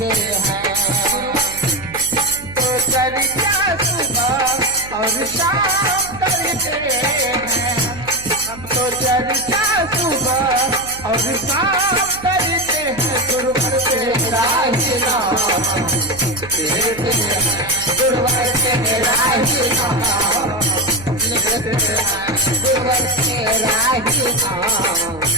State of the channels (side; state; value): right; noise; hum, 17 dB below the sound